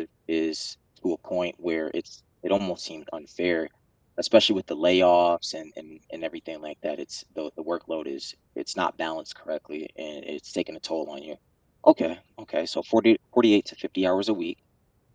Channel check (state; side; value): identical; both; correlation 1.00